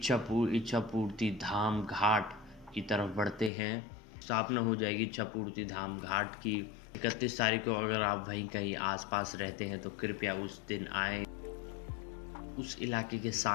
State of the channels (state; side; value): drops out; right; at 3.5 s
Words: धाम घाट की तरफ बढ़ते हैं। स्थापना हो जाएगी इच्छापूर्ति धाम घाट की 31 तारीख को। अगर आप वहीं कहीं आसपास रहते हैं तो कृपया उस दिन आएँ। उस इलाके के